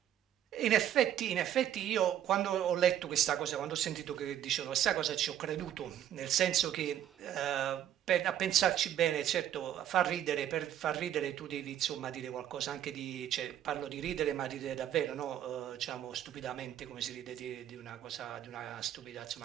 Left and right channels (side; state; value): left; quieter; 10.9 dB